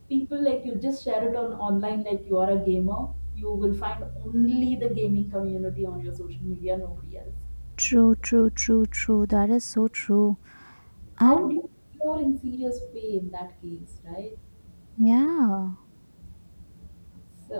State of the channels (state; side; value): inverted; both; correlation -1.00